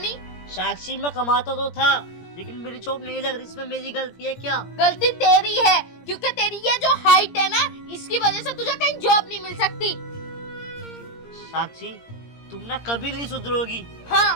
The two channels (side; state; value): right; late; 17 ms